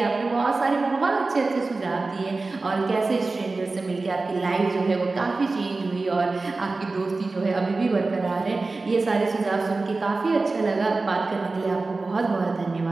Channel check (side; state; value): left; quieter; 3.6 dB